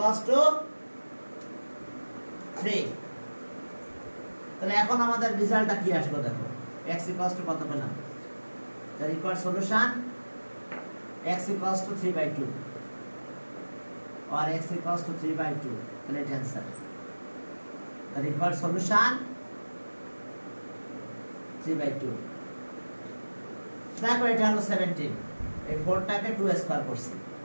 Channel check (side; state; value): both; inverted; correlation -1.00